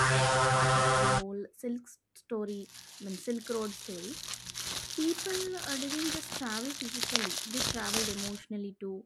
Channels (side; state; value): both; identical; correlation 1.00